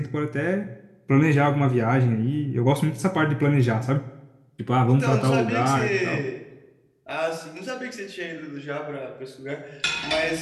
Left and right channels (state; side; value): identical; both; correlation 1.00